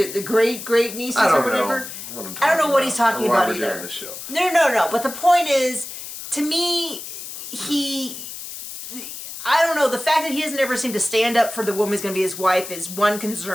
the great nieces or whatever? I don't know what he's talking about either. Doing this show. No. But the point is, to me, I don't know. The fact that he doesn't ever seem to stand up for the woman who's going to be his wife is one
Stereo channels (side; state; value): left; noise; hiss, 10 dB below the sound